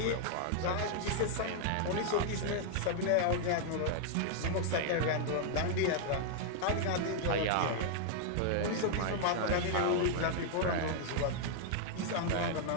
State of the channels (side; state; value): both; different; correlation 0.00